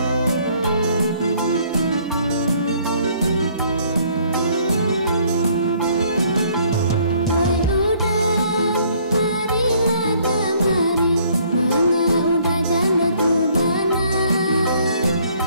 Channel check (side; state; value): both; inverted; correlation -0.62